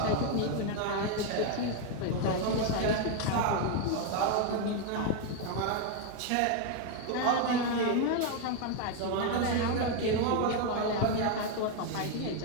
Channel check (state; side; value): different; both; correlation 0.01